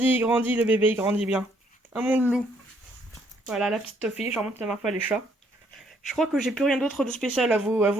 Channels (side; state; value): both; normal; correlation 0.68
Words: le bébé, il grandit bien. Hein, mon loup? Voilà, la petite Toffee. Je remonte la marque pas les chats. Je crois que j'ai plus rien d'autre de spécial à